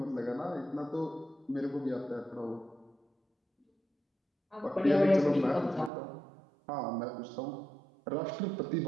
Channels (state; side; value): drops out; left; at 5.9 s